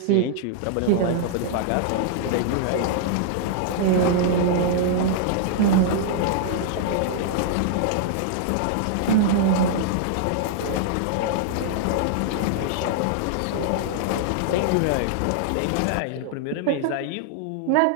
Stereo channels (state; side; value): different; both; correlation -0.01